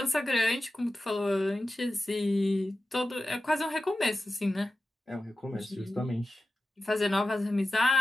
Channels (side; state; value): both; normal; correlation 0.94